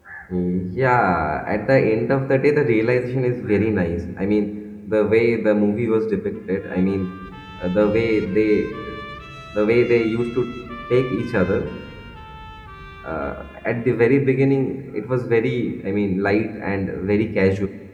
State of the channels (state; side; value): identical; both; correlation 1.00